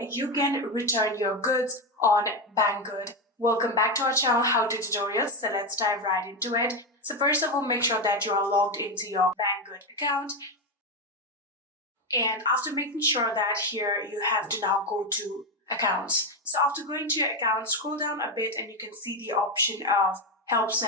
can return your goods on Banggood. Welcome back to our channel How To Tutorials, so let's dive right into it. So first of all, make sure that you are logged into your Banggood account, and after making sure that here you have to now go to accounts. So after going to your account, scroll down a bit and you can see the option of Help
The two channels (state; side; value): normal; both; correlation 0.11